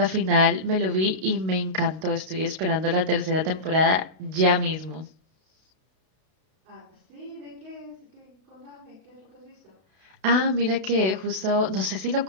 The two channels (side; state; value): left; late; 32 ms